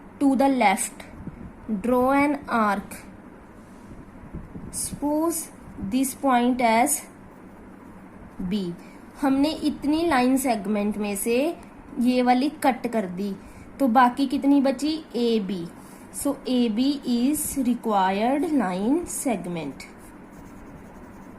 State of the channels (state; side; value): identical; both; correlation 1.00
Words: to the left, draw an arc. Suppose this point as B. हमने इतनी लाइन सेगमेंट में से ये वाली कट कर दी तो बाकी कितनी बची AB. So AB is required line segment.